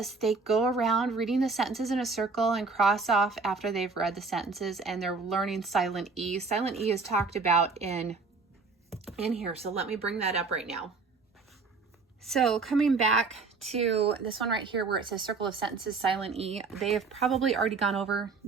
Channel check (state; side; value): quieter; left; 4.3 dB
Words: They go around reading the sentences in a circle and cross off after they've read the sentences, and they're learning silent E. Silent E is talked about in here. So let me bring that up right now. So coming back to this one right here where it says circle of sentences, silent E, they have probably already gone over.